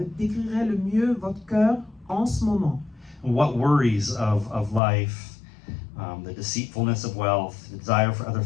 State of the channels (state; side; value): drops out; right; at 4.8 s